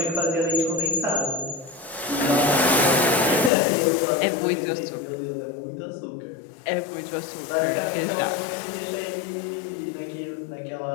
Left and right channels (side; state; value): right; drops out; at 3.5 s